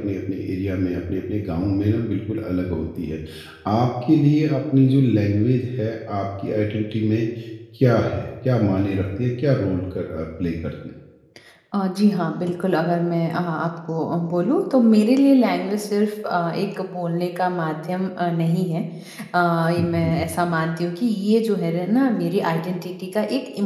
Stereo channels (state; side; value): identical; both; correlation 1.00